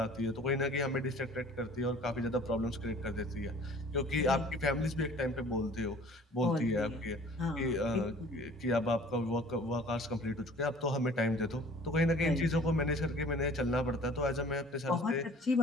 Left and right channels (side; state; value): both; normal; correlation 0.49